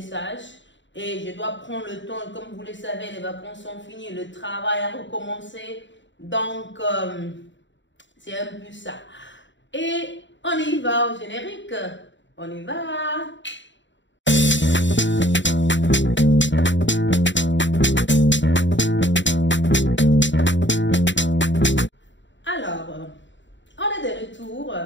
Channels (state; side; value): late; right; 0.54 ms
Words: et je dois prendre le temps. Comme vous le savez, les vacances sont finies, le travail a recommencé. Donc, c'est un peu ça. Et on y va au générique. On y va. Alors, on est de retour,